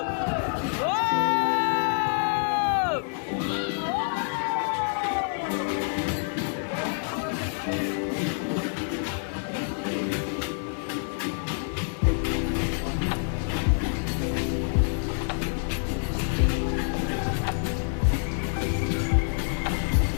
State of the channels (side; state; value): right; silent; 60 dB below the other